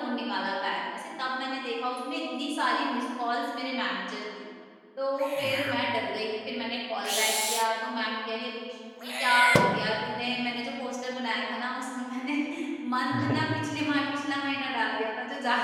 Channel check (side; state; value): both; identical; correlation 1.00